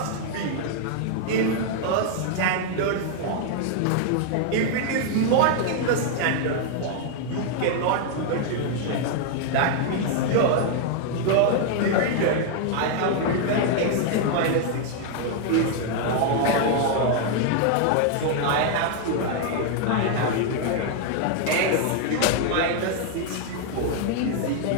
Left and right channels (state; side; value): different; both; correlation 0.00